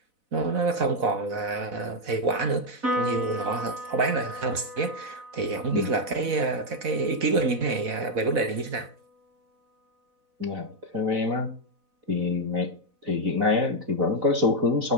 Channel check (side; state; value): left; late; 4.0 ms